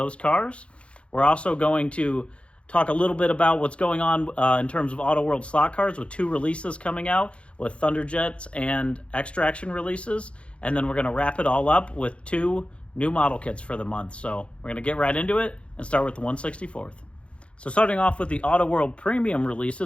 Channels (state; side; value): late; right; 0.060 ms